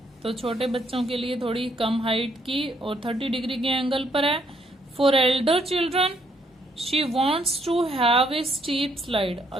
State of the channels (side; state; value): both; normal; correlation 0.70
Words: तो छोटे बच्चों के लिए थोड़ी कम हाइट की और 30 डिग्री के एंगल पर है। For elder children she wants to have a steep slide.